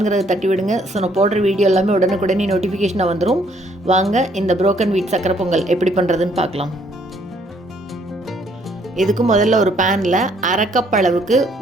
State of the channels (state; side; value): normal; both; correlation 0.66